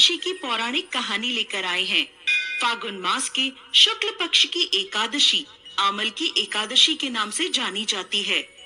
की पौराणिक कहानी लेकर आए हैं। फागुन मास के शुक्ल पक्ष की एकादशी आमल की एकादशी के नाम से जानी जाती है।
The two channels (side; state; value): both; identical; correlation 1.00